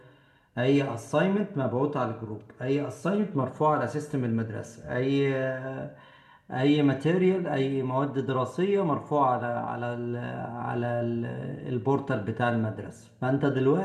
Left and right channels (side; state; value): both; identical; correlation 1.00